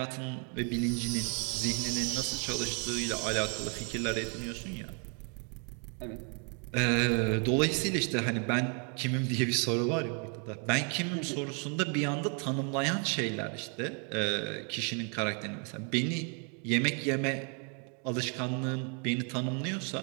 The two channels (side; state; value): left; quieter; 39.0 dB